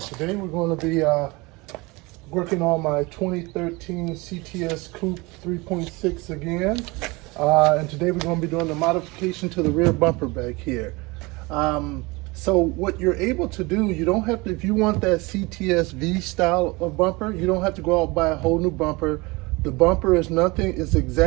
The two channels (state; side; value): quieter; left; 24.5 dB